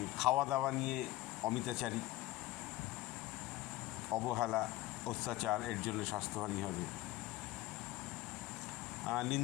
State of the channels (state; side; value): quieter; right; 17.2 dB